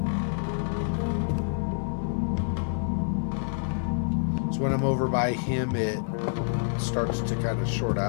So when I'm over by him, it starts to kind of short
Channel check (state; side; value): silent; right; digital silence